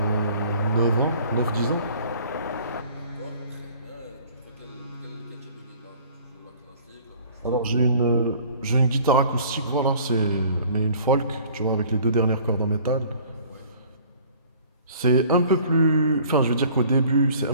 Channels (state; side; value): inverted; both; correlation -0.52